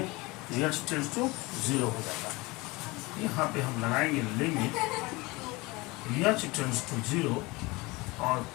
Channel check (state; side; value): quieter; right; 23.5 dB